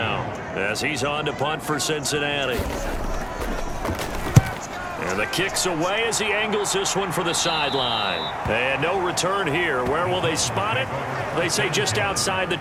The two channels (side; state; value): both; identical; correlation 1.00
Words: as he's on to punt for Cincinnati. And the kick's away as he angles this one for the sideline. And no return here. Where will they spot it? They say just outside the